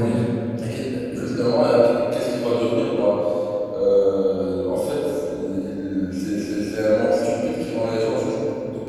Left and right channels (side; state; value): both; identical; correlation 1.00